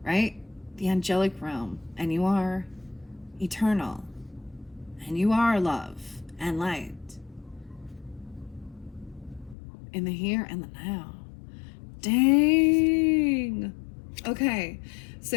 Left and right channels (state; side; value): drops out; right; at 9.6 s